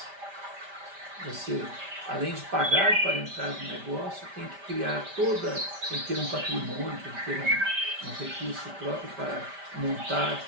Você, além de pagar para entrar no negócio, tem que criar tem que ter um patrimônio, tem que ter um recurso próprio para montar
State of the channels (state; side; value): late; left; 5.1 ms